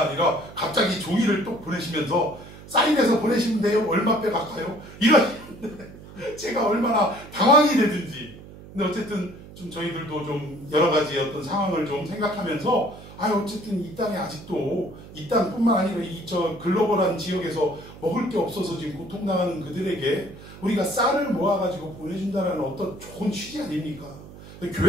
아니라 갑자기 종이를 또 보내시면서 사인해서 보내시면 돼요. 얼마 빼갈까요? 이러시는데 제가 얼마나 당황이 되든지. 근데 어쨌든 좀 저희들도 좀 여러 가지 어떤 상황을 좀 생각하면서 어쨌든 이 땅에 아직도 이 땅뿐만 아니라 저 글로벌한 지역에서 먹을 게 없어서 지금 고통당하는 그들에게 우리가 쌀을 모아가지고 보내준다는 어떤 좋은 취지 아닙니까?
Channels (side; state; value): right; noise; hum, 17 dB below the sound